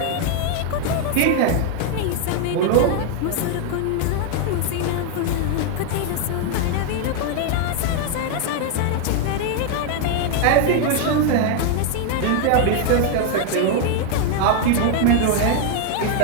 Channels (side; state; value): both; different; correlation 0.00